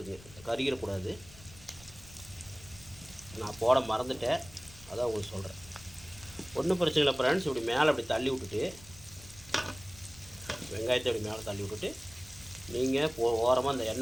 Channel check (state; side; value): noise; left; rumble, 20 dB below the sound